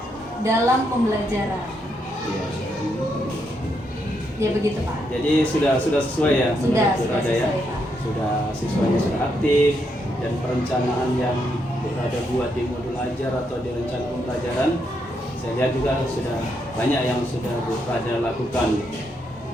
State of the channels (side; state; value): both; normal; correlation 0.78